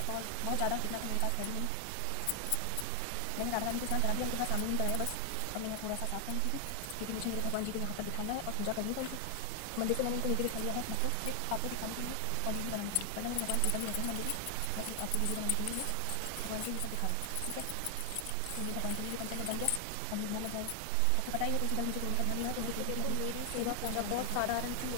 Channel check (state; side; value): different; both; correlation 0.00